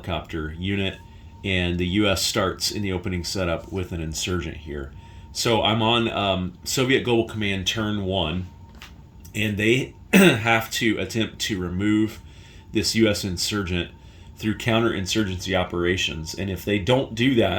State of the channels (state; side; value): identical; both; correlation 1.00